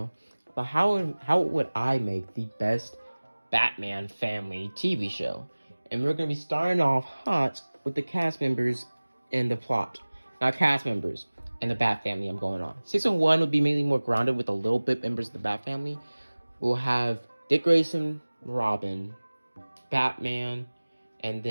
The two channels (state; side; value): inverted; both; correlation -1.00